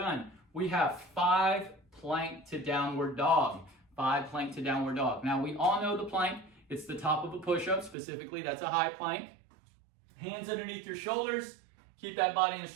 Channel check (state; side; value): drops out; left; at 8.0 s